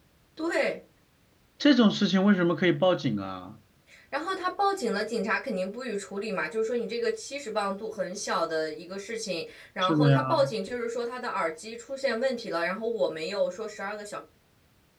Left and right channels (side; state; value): both; identical; correlation 1.00